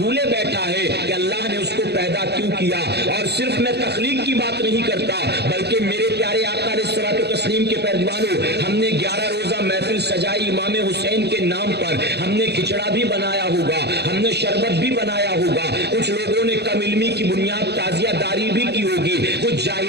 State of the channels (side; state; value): left; late; 0.48 ms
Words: بیٹھا ہے کہ اللہ نے اس کو پیدا کیوں کیا۔ اور صرف میں تخلیق کی بات نہیں کرتا بلکہ میرے پیارے آقا علیہ الصلوۃ والتسلیم کے پیروانوں، ہم نے 11 روزہ محفل سجائی امام حسین کے نام پر، ہم نے کھچڑا بھی بنایا ہوگا، ہم نے شربت بھی بنایا ہوگا، کچھ لوگوں نے کم علمی کی بنیاد تعزیہ داری بھی کی ہوگی، کچھ